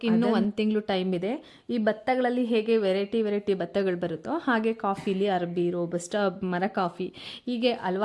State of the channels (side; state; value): both; identical; correlation 1.00